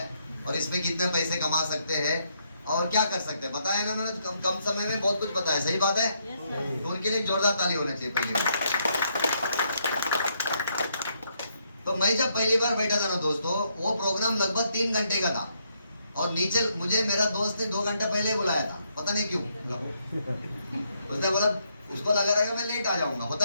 और इसमें कितने पैसे कमा सकते हैं और क्या कर सकते हैं, बताया ना उन्होंने। कम समय में बहुत कुछ बताया, सही बात है। तो उनके लिए जोरदार ताली होनी चाहिए पहली बार। तो मैं जब पहली बार बैठा था ना दोस्तों, वो प्रोग्राम लगभग 3 घंटे का था और नीचे मुझे मेरा दोस्त ने 2 घंटे पहले बुलाया था, पता नहीं क्यों। उसने बोला, उसको लगा रहा है मैं लेट आ जाऊंगा।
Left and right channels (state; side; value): inverted; both; correlation -0.75